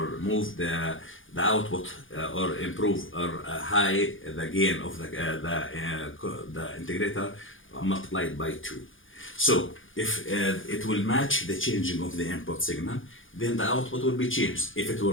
move the output or improve or high the gain of the integrator multiplied by 2. So if it will match the changing of the input signal, then the output will be changed. If it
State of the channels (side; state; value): right; late; 0.58 ms